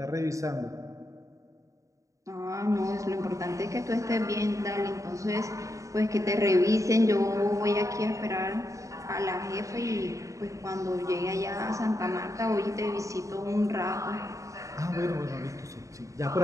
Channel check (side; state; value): left; late; 0.16 ms